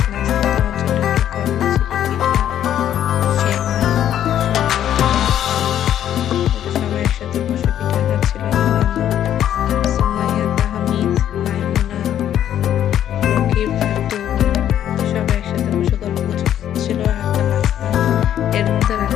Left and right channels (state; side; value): quieter; right; 10.7 dB